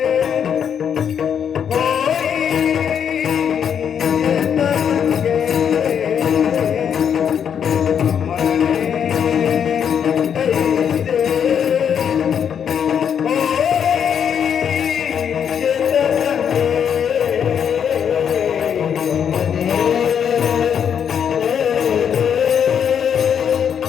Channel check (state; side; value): quieter; right; 8.1 dB